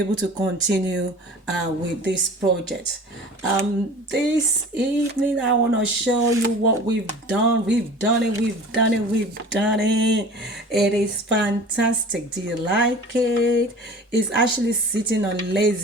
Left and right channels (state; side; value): normal; both; correlation 0.41